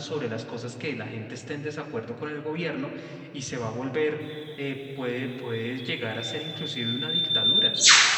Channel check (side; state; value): both; identical; correlation 1.00